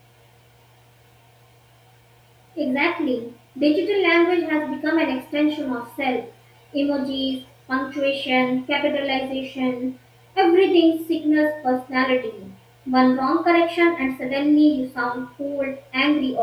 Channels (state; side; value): identical; both; correlation 1.00